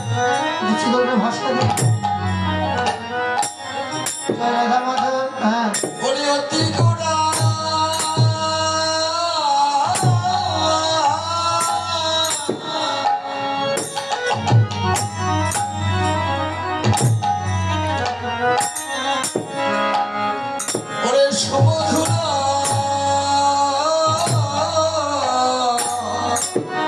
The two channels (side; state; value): both; identical; correlation 1.00